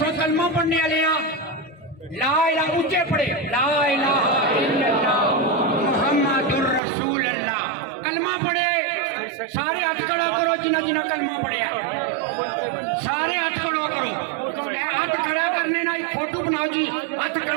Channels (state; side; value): drops out; left; at 6.8 s